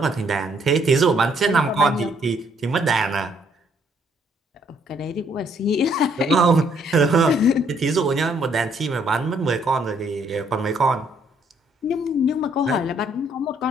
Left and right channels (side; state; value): both; normal; correlation 0.67